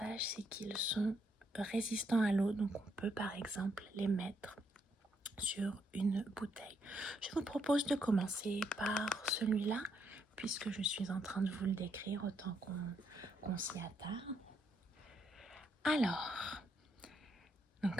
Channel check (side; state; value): both; normal; correlation 0.75